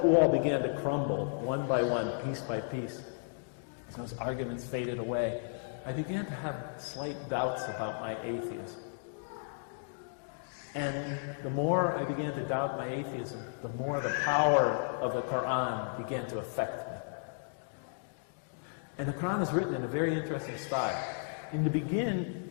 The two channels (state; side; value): silent; right; digital silence